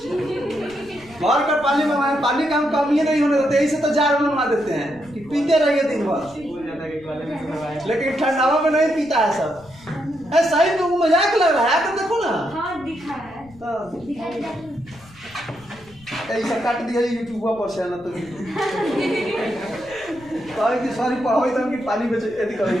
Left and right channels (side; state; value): left; noise; rumble, 24 dB below the sound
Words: भर कर पानी मंगाए, पानी का हम कमी नहीं होने देते, इसे तो जार मंगा देते हैं कि पीते रहिए दिन भर, लेकिन ठंडावा में नहीं पीता है सब। सही तो मजाक लग रहा है, तो देखो ना। हाँ दिखा है तो ऐसा काट दिया यूट्यूब पर से ना तो कहे कि सॉरी पढ़ाई तो कि पानी बेच यदि